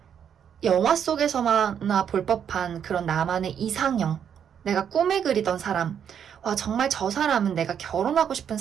영화 속에서만나 볼 법한 그런 나만의 이상형, 내가 꿈에 그리던 사람, 와, 정말 저 사람은 내가 결혼하고 싶은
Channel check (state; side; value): quieter; left; 8.3 dB